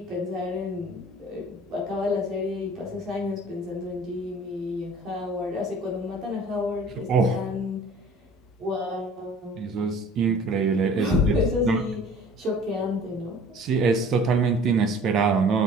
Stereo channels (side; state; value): both; normal; correlation 0.48